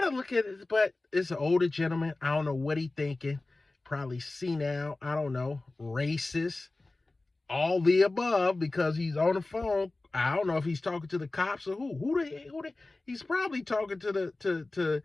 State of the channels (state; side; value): quieter; right; 3.1 dB